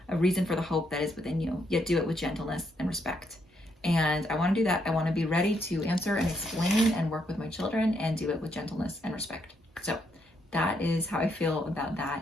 a reason for the hope that is within you, yet do it with gentleness and respect." And I want to do that. I want to be ready to answer and explain and work with my children and do it with gentleness and respect. So that is how I feel about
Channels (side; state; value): both; normal; correlation 0.76